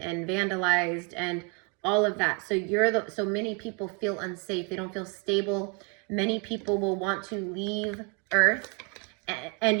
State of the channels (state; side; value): quieter; left; 34.9 dB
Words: vandalized and all of that. So so many people feel unsafe. They don't feel stable. Many people will want to leave Earth.